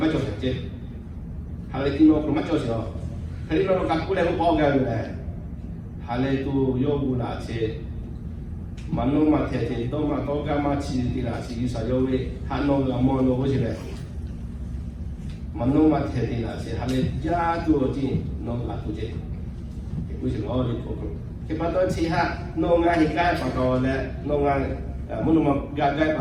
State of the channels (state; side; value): identical; both; correlation 1.00